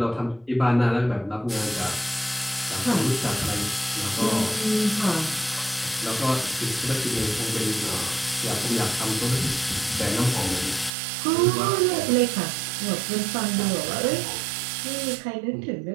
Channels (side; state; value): left; drops out; at 10.9 s